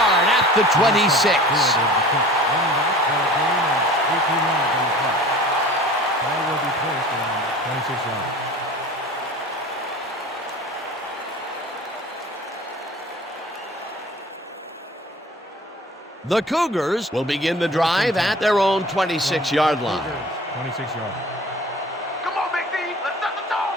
at the 26. The Cougars will begin the drive at their own 26-yard line. 26 yards. Come on, Big D. Let's set the tone,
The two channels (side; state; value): both; normal; correlation 0.43